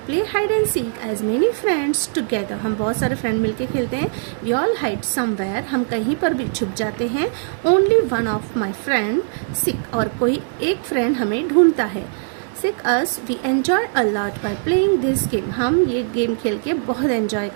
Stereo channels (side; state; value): left; silent; digital silence